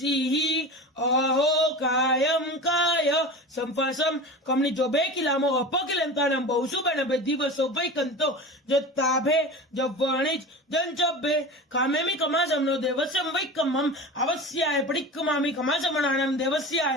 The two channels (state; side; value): normal; both; correlation 0.31